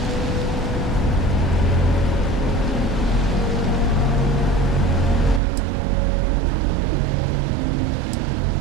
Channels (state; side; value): drops out; left; at 5.4 s